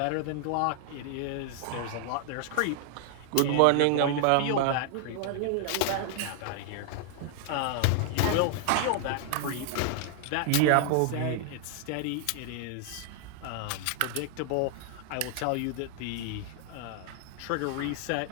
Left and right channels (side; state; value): both; different; correlation 0.00